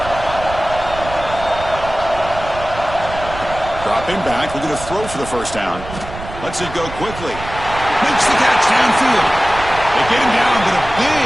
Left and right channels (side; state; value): right; noise; rumble, 12 dB below the sound